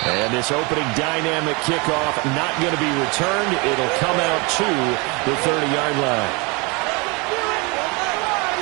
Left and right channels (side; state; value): left; quieter; 28.8 dB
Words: And this opening dynamic kickoff not going to be returned. It'll come out to the 30-yard line.